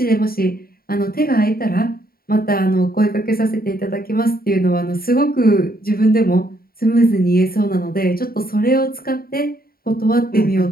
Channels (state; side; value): late; right; 0.43 ms